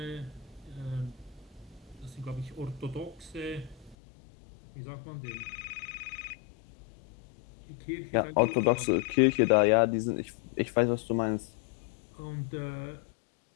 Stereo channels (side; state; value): right; drops out; at 4.0 s